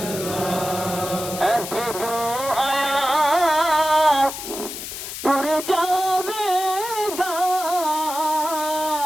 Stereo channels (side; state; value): left; noise; hiss, 8 dB below the sound